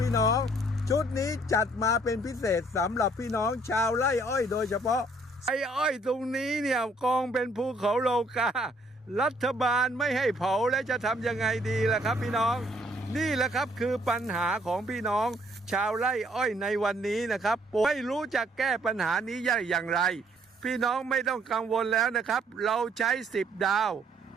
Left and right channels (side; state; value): both; normal; correlation 0.65